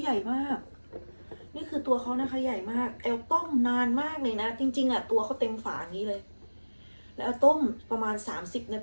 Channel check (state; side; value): inverted; both; correlation -1.00